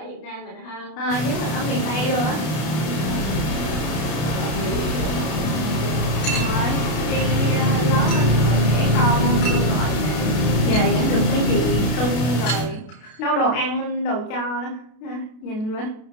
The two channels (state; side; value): late; right; 32 ms